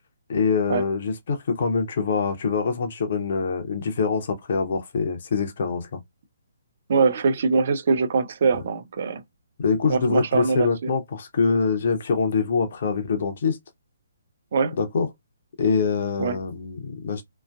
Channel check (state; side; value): inverted; both; correlation -0.68